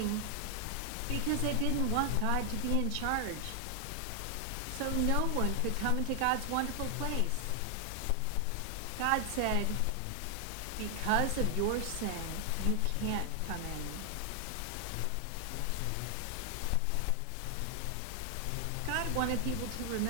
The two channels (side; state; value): both; different; correlation 0.00